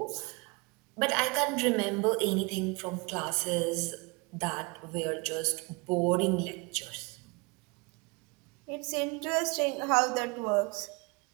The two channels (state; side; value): quieter; left; 28.5 dB